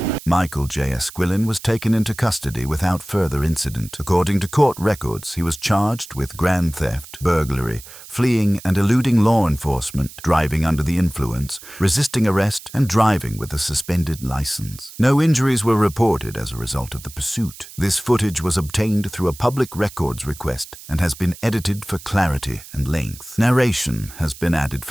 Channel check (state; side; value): noise; right; hiss, 17 dB below the sound